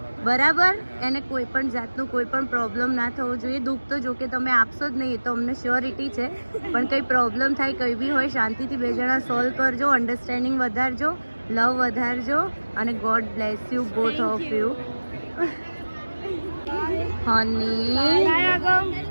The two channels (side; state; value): both; inverted; correlation -1.00